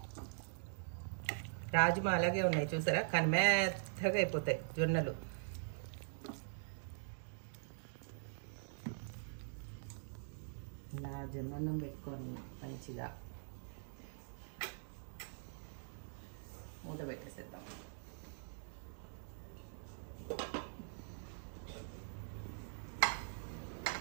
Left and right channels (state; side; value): silent; left; digital silence